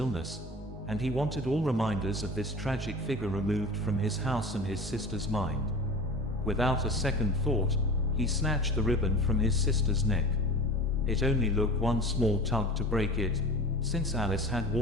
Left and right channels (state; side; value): normal; both; correlation 0.36